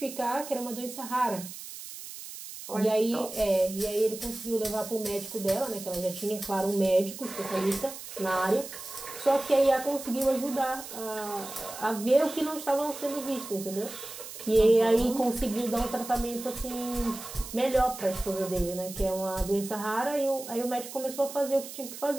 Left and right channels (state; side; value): noise; right; hiss, 12 dB below the sound